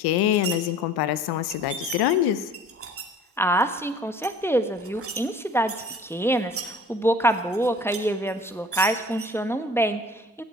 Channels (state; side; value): normal; both; correlation 0.47